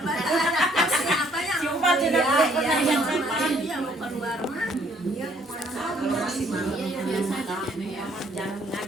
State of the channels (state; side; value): normal; both; correlation 0.64